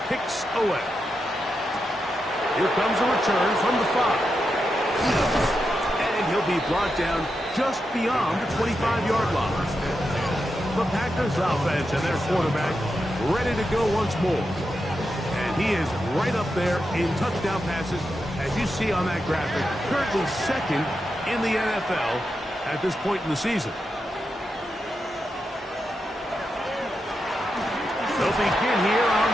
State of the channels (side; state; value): both; normal; correlation 0.87